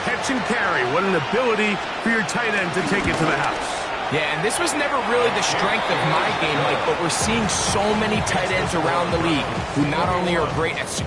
catch and carry, what an ability for your tight end to take it to the house. Yeah, and this was never really the strength of my game, Mike, but we're seeing so many tight ends around the league who not only are great at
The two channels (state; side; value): identical; both; correlation 1.00